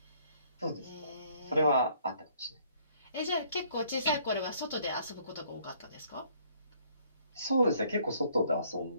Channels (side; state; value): both; inverted; correlation -0.63